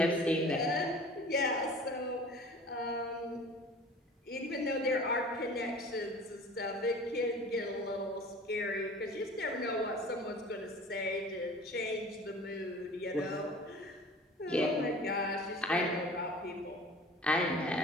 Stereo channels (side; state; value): both; normal; correlation 0.43